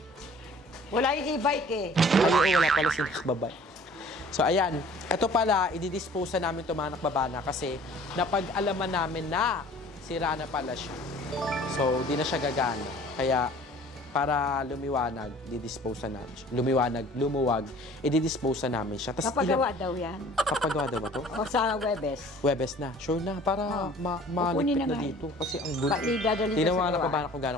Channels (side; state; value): both; normal; correlation 0.50